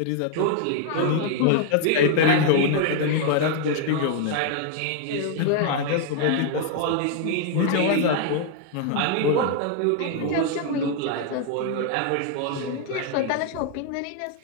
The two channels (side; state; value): both; different; correlation 0.00